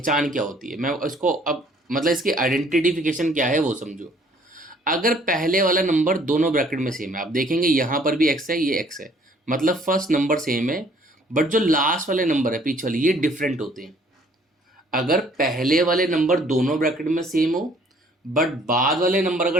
क्या होती है, मैं इसको अब मतलब इसकी आइडेंटिफिकेशन क्या है वो समझो। अगर पहले वाला नंबर दोनों ब्रैकेट में सेम है, आप देखेंगे यहाँ पर भी x है, ये x है, मतलब फर्स्ट नंबर सेम है, बट जो लास्ट वाले नंबर है पीछे वाले ये डिफरेंट होते हैं। अगर पहले वाले नंबर दोनों ब्रैकेट में सेम हो बट बाद वाले नंबर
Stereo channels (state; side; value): normal; both; correlation 0.59